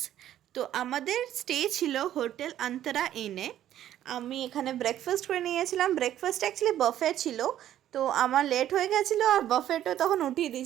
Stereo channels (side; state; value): left; quieter; 11.8 dB